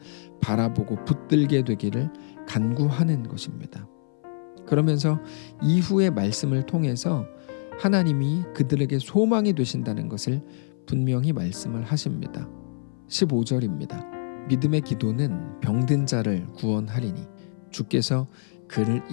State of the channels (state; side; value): silent; right; 57 dB below the other